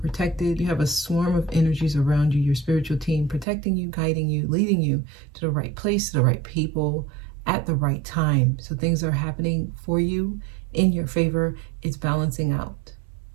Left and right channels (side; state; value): left; drops out; at 3.5 s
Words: You have a swarm of energies around you, your spiritual team, protecting you, guiding you, leading you to the right place, to the right people, at the right time. So things are happening for you in your favor. It's balancing out.